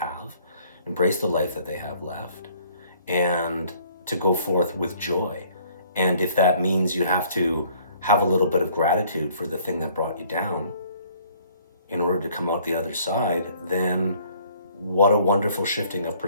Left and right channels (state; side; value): inverted; both; correlation -0.60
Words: embrace the life that they have left, and to go forth with joy. And if that means you have to have a little bit of gratitude for the thing that brought you down in order to come out the other side, then what a wonderful shifting of